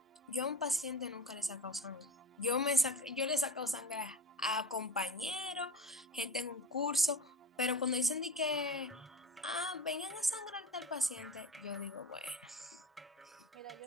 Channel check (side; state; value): both; normal; correlation 0.33